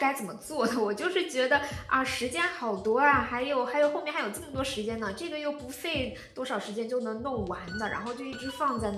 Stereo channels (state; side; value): identical; both; correlation 1.00